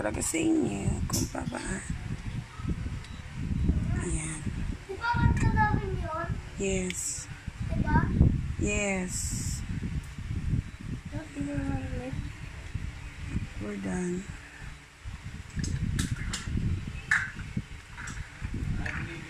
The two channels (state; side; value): identical; both; correlation 1.00